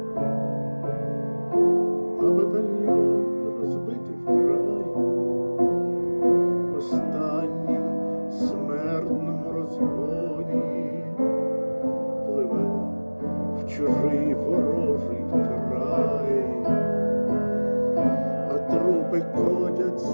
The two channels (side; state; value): both; inverted; correlation -1.00